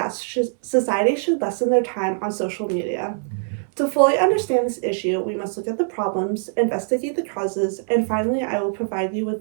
society should lessen their time on social media. To fully understand this issue, we must look at the problems, investigate the causes, and finally, I will provide you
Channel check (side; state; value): left; silent; 62 dB below the other